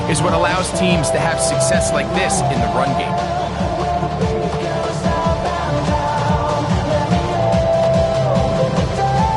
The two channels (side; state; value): both; identical; correlation 1.00